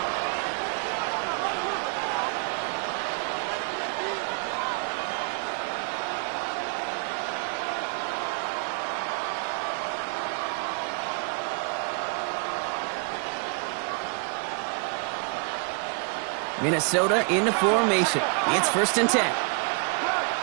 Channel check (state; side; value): quieter; left; 36.2 dB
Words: Minnesota into formation. It's 1st and 10.